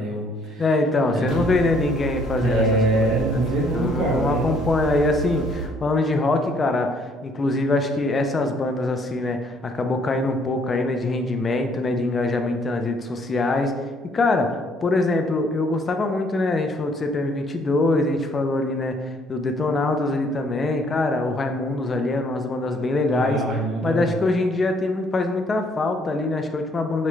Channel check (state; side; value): normal; both; correlation 0.64